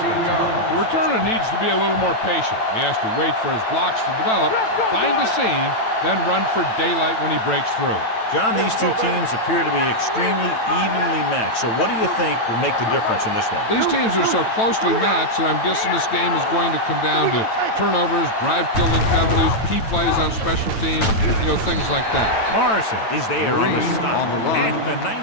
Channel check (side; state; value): right; late; 9.0 ms